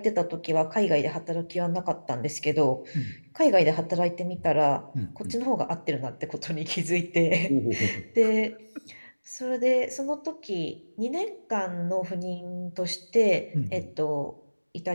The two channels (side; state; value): both; inverted; correlation -1.00